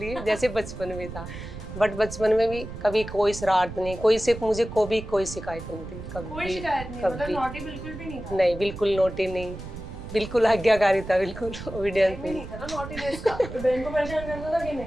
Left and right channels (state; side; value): noise; right; rumble, 11 dB below the sound